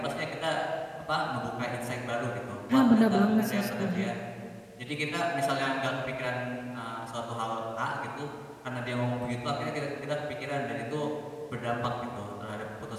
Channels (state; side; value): identical; both; correlation 1.00